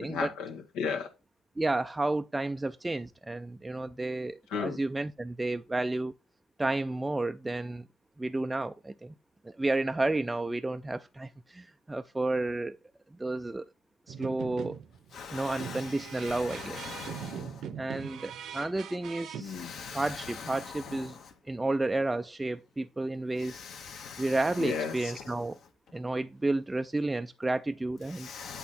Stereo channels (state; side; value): normal; both; correlation 0.94